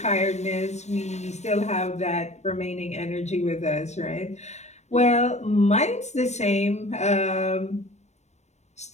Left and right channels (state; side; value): late; right; 0.33 ms